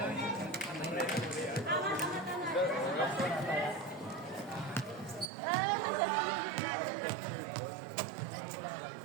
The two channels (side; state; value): left; drops out; at 5.3 s